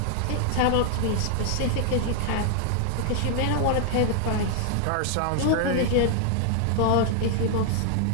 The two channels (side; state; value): both; different; correlation 0.00